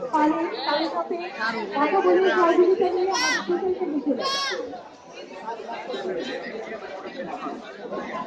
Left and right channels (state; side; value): identical; both; correlation 1.00